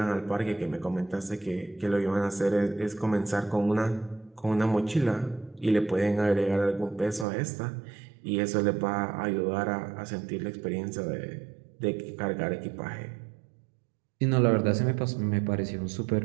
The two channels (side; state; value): left; drops out; at 7.2 s